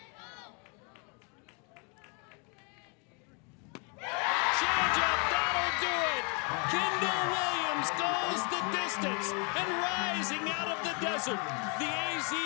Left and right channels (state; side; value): quieter; right; 35.4 dB